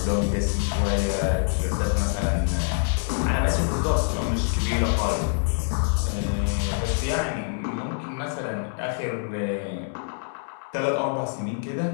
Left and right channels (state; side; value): silent; right; 61 dB below the other